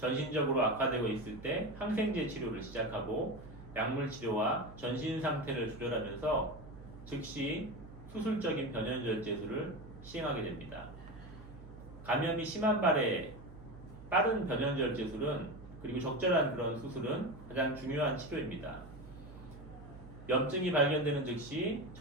악화되고 있을 때 항생제 치료를 시작하고 약물 치료와 전신 상태를 조절하면서 즉시 수술적인 변연절제술을 시행하게 됩니다. 감염이 심한 발에 빠른 변연절제술은 그리고 적절한 그런 수술은 가장 중요한 치료입니다. 염증이 발견되는 즉시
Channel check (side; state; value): right; noise; hum, 16 dB below the sound